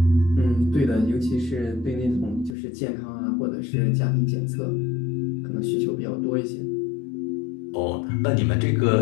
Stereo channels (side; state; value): right; drops out; at 2.6 s